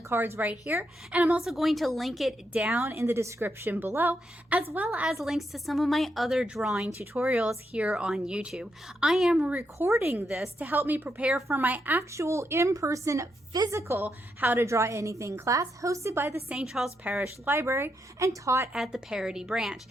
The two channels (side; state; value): both; normal; correlation 0.82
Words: cards right here, and I'm also going to link it down in the description below, as well as links to some of my other drawing tutorials here on YouTube. I am recording this to help me prepare for my actual in-person physical How to Draw Anything class hosted by the St. Charles Parish Library and taught at the Parody branch.